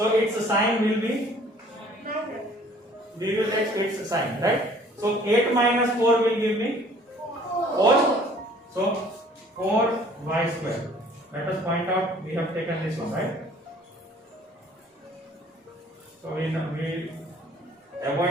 its sign will be. We will take its sign, right? So 8 minus 4 will give me 4. So 4y square. Let us point out we have taken this one, right? So we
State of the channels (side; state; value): both; normal; correlation 0.55